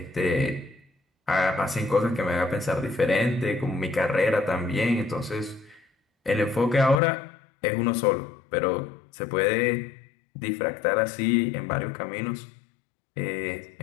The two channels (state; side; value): drops out; right; at 7.0 s